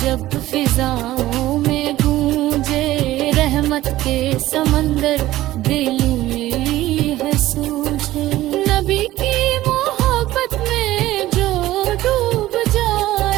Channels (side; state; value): left; quieter; 15.7 dB